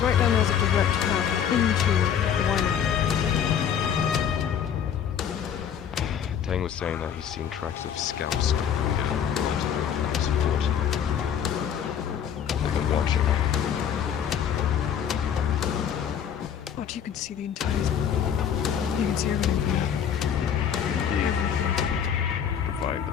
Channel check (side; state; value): right; quieter; 8.5 dB